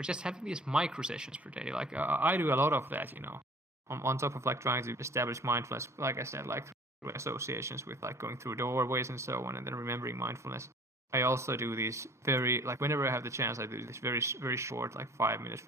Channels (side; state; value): both; normal; correlation 0.49